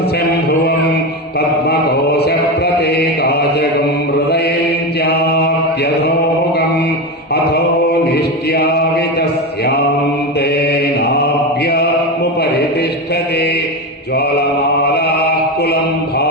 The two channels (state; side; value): normal; both; correlation 0.18